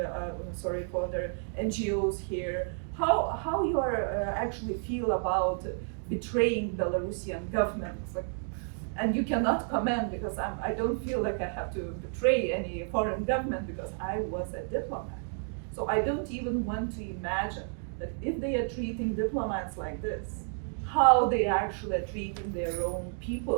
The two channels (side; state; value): left; silent; 57 dB below the other